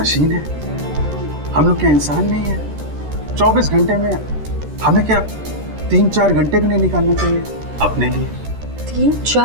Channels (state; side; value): late; left; 13 ms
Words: है? हम लोग क्या इंसान नहीं है? 24 घंटे में हमें क्या 3-4 घंटे भी नहीं निकालना चाहिए अपने लिए?